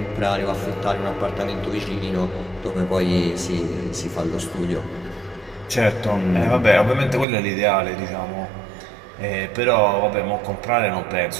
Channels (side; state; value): left; drops out; at 7.2 s